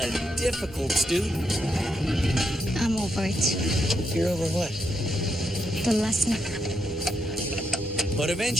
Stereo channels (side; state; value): both; normal; correlation 0.81